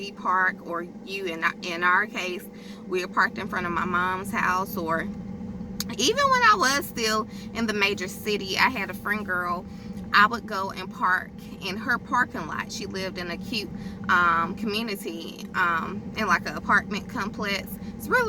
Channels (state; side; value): identical; both; correlation 1.00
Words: park, or you, in our case, we are parked in front of my mom's house, or even when I was still in the major city, I had a friend girl. I would go and park in her parking lot. She lived in a cute community, in like an apartment complex. It's